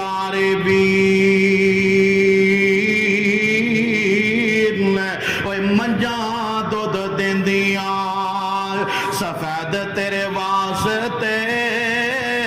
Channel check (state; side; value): identical; both; correlation 1.00